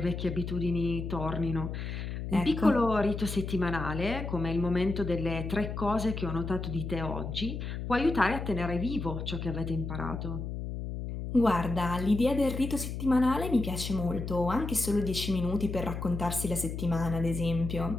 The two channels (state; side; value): noise; left; hum, 5 dB below the sound